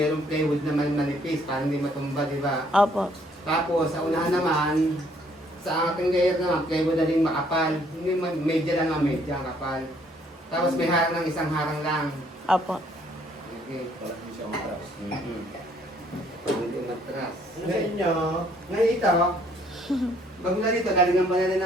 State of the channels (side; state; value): both; normal; correlation 0.64